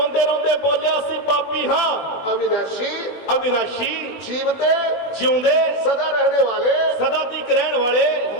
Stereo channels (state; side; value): late; right; 20 ms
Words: ਰੋਂਦੇ ਬੋਲਿਆ ਅਸੀਂ ਪਾਪੀ ਹਾਂ। अविनाशी, ਅਵਿਨਾਸ਼ੀ, जीवते, ਜਿਉਂਦੇ, सदा रहने वाले ਸਦਾ ਤੱਕ ਰਹਿਣ ਵਾਲੇ